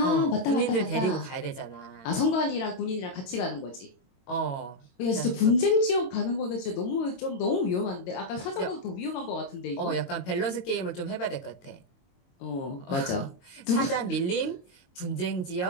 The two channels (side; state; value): right; late; 22 ms